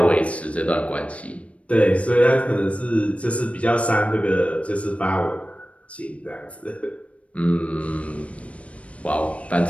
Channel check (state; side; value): late; right; 0.064 ms